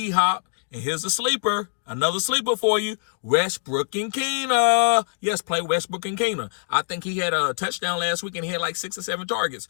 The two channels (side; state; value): right; silent; digital silence